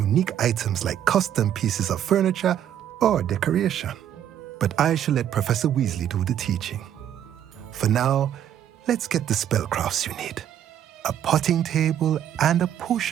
items like custom pieces of furniture or decoration. But I shall let Professor Weasley do the teaching. For now, let's get the spellcrafts you need. A potting table and a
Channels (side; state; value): left; quieter; 10.3 dB